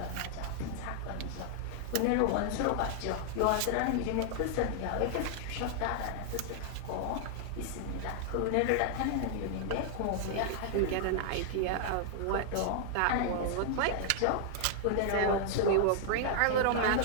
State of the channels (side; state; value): both; different; correlation -0.01